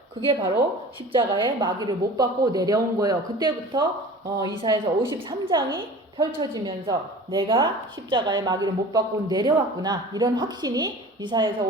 그게 바로 십자가에 마귀를 못 받고 내려온 거예요. 그때부터 이사야서 53장이 펼쳐지면서 내가 십자가에 마귀를 못 받고 내려왔구나. 이런 확신이 이사야서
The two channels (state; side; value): normal; both; correlation 0.41